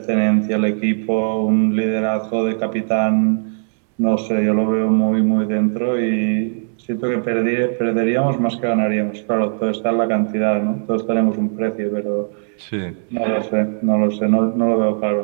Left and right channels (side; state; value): left; silent; 67 dB below the other